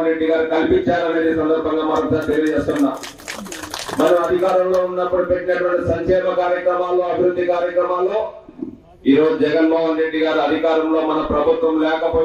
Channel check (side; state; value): both; identical; correlation 1.00